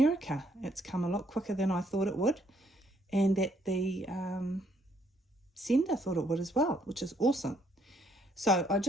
It's come a lot quicker than I thought it would, and that the sender thought it would as well, which is awesome. So I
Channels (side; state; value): both; normal; correlation 0.69